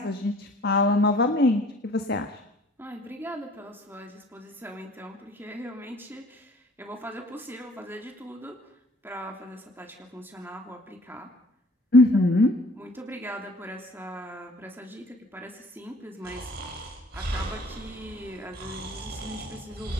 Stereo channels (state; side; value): normal; both; correlation 0.53